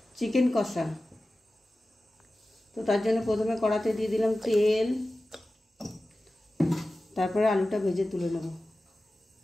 চিকেন কষা। তো তার জন্য প্রথমে কড়াতে দিয়ে দিলাম তেল, তারপরে আলুটা ভেজে তুলে নেব।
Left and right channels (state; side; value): normal; both; correlation 0.95